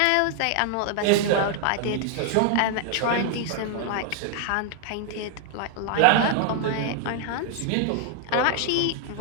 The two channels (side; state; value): both; different; correlation 0.00